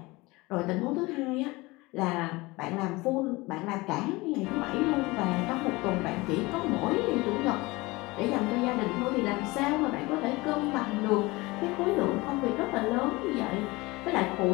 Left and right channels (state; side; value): quieter; right; 22.4 dB